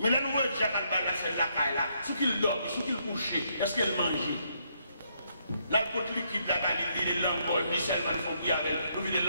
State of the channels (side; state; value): both; inverted; correlation -0.74